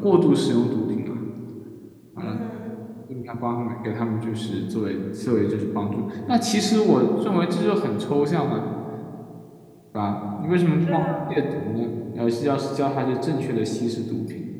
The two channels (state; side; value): identical; both; correlation 1.00